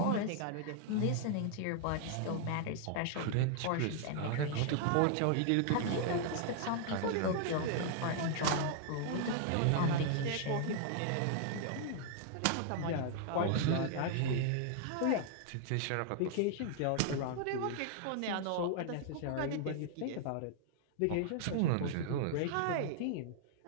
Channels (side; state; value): both; different; correlation 0.00